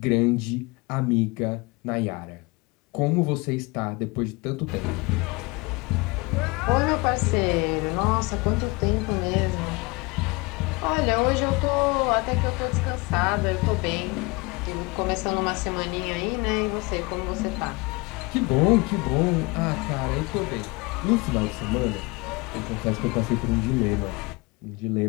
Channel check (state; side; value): quieter; right; 26.0 dB